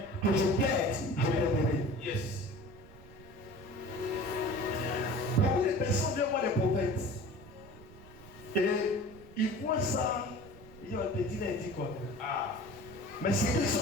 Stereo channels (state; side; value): noise; right; rumble, 20 dB below the sound